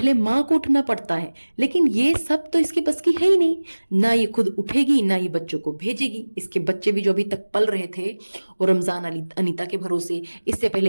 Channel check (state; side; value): inverted; both; correlation -1.00